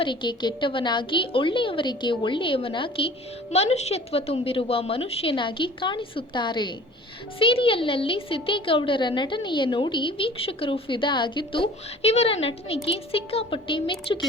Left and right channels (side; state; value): both; normal; correlation 0.46